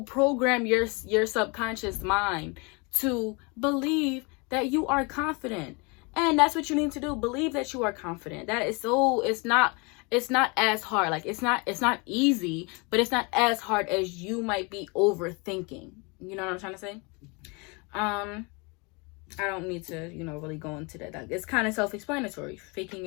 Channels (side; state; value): right; quieter; 29.7 dB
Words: program your subconscious mind to believe that you are confident. And that's what you need to do. Believe that you are confident. That is so, it's not as hard. Like, it's not easy, but it's not as hard as you might be overthinking. You know what I'm trying to say? I don't need to, really go into that. It's kind of self-explanatory. Faking